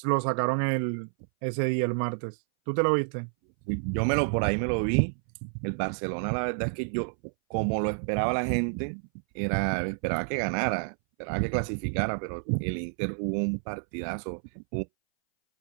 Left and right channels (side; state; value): left; silent; 59 dB below the other